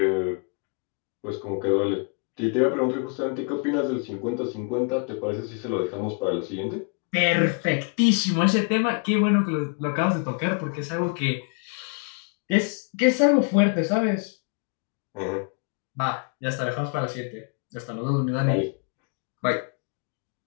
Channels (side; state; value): right; quieter; 37.8 dB